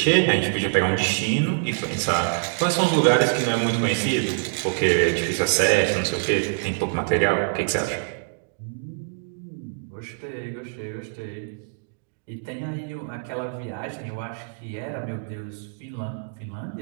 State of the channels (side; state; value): left; silent; digital silence